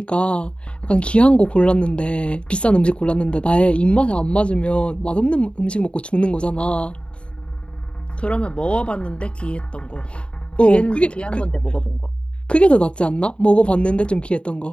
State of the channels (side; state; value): right; late; 0.057 ms